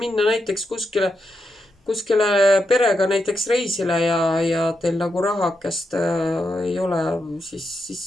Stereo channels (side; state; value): both; normal; correlation 0.85